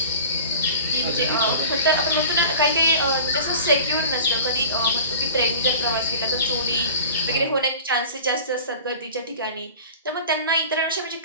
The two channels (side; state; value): both; inverted; correlation -0.39